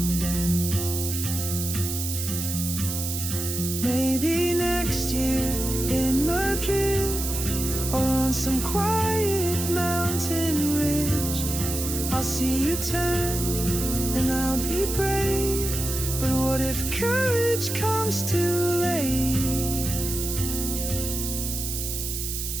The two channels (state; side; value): noise; right; hiss, 4 dB below the sound